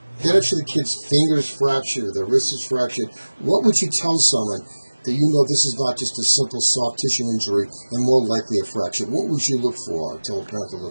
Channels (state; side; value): inverted; both; correlation -1.00